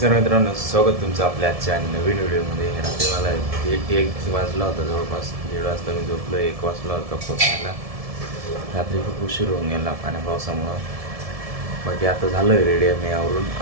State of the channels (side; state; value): left; late; 1.7 ms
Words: मित्रांनो, स्वागत तुमचं आपल्या आजच्या नवीन व्हिडिओमध्ये. रात्री मला एक वाजला होता, जवळपास 1:30 वाजता मी झोपलो. 1 वाजला होता पोचायला. रात्री खूप उशीर होऊन गेला पाण्या पावसामुळं. बाकी आता झालं रेडी मी आवरून.